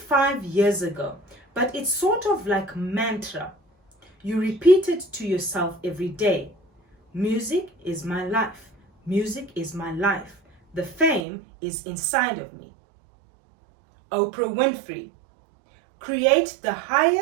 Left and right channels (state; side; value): drops out; left; at 11.2 s